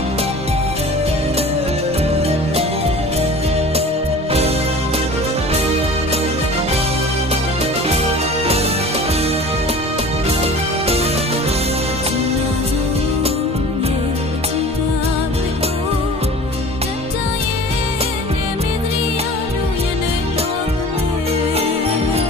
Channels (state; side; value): normal; both; correlation 0.41